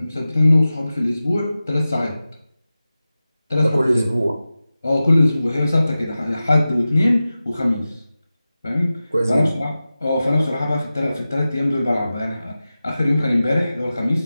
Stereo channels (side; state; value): both; inverted; correlation -0.95